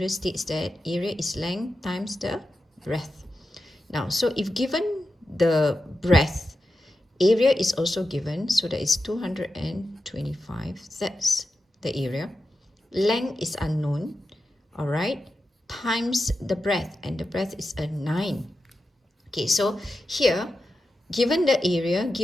states that area is length times the breadth. Now, so if given the breadth, area is also given, so that is 225, that's the area. Length is unknown, all right, times the breadth, and the breadth is a 9. Okay, so here, given the area,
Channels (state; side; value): normal; both; correlation 0.91